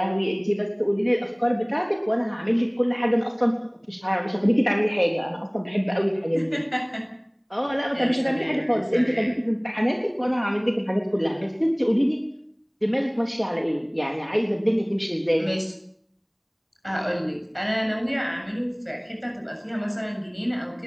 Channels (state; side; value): identical; both; correlation 1.00